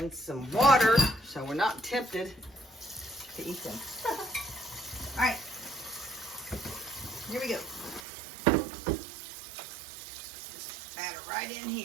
some water so we're not tempted to eat them. All right. Here we go. Just batter right in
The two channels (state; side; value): drops out; left; at 8.1 s